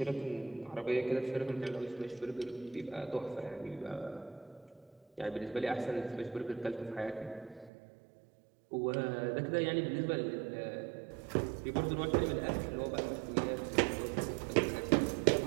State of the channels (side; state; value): left; drops out; at 7.7 s